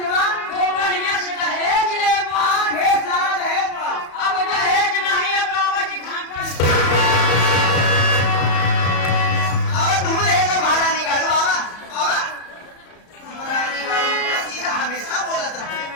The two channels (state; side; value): late; right; 34 ms